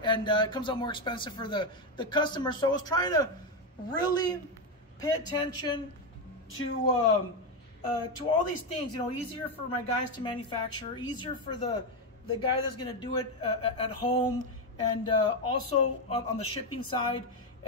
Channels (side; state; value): both; normal; correlation 0.08